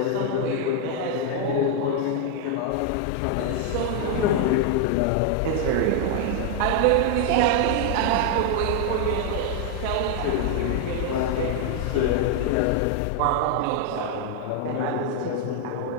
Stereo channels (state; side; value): different; both; correlation 0.00